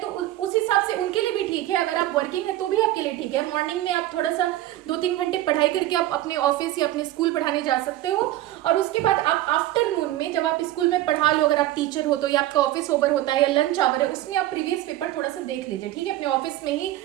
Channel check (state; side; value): quieter; left; 14.8 dB